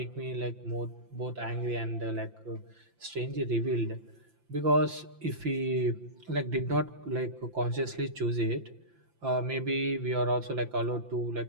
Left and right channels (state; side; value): late; left; 5.8 ms